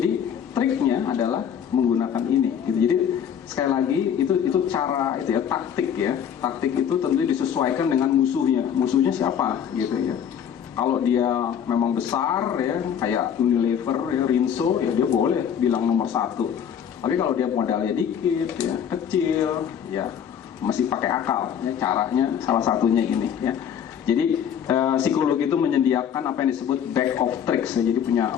triknya adalah menggunakan ini gitu. Jadi sekali lagi itu cara itu ya, taktik ya. Taktik itu tentu disesuaikan dengan musuhnya. Musuhnya siapa gitu ya. Kalau dia memang besar ya, kayak Unilever ya, Rinso ya, dia boleh bilang nomor satu. Tapi kalau dia modalnya dikit ya, kecil ya, masih pakai akal ya. Caranya salah satunya ini ya. Jadi psikologi itu menyediakan apa yang disebut bag of tricks ya. Jadi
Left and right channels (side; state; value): right; quieter; 8.6 dB